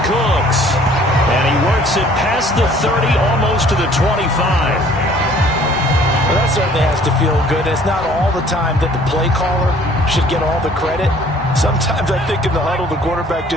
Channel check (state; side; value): normal; both; correlation 0.55